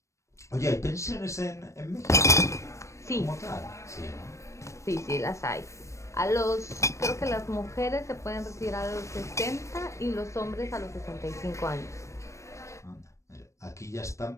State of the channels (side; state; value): right; late; 0.15 ms